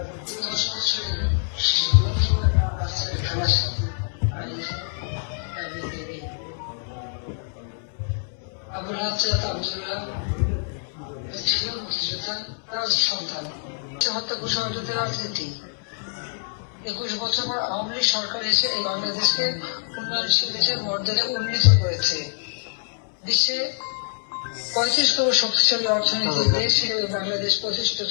আবুল হাসান আব্দুল্লাহ ছিল মুক্তিযোদ্ধা, তার সন্তান। হত্যা কুশলতার রাজনীতি 21 বছর পর আওয়ামী লীগ সরকার এসে এই বাংলাদেশকে উন্নয়নশীল দেশের মর্যাদা উন্নীত করেছে। বিশ্বে 35তম শক্তিশালী অর্থনৈতিক দেশ হিসেবে বাংলাদেশ প্রতিষ্ঠিত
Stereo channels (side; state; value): right; silent; 62 dB below the other